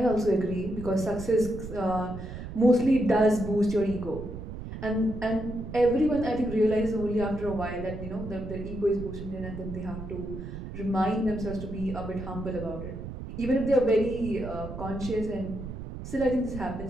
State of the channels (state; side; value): noise; right; rumble, 9 dB below the sound